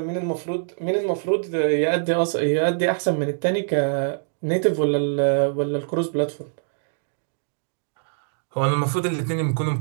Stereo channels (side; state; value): left; silent; digital silence